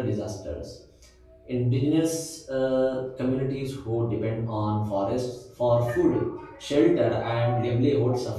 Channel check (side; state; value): both; identical; correlation 1.00